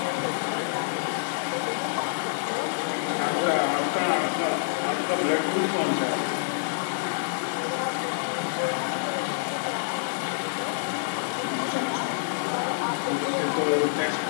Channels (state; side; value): silent; right; digital silence